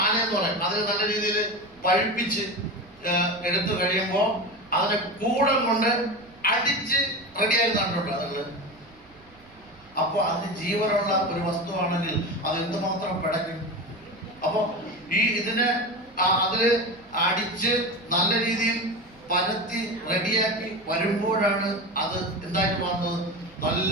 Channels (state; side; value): noise; right; rumble, 28 dB below the sound